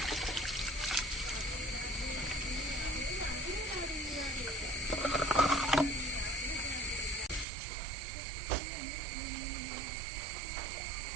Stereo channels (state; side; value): drops out; left; at 7.5 s